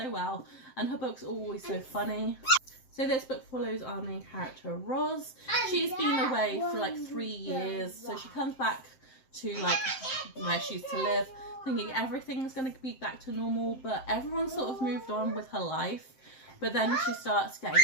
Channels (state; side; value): late; right; 7.7 ms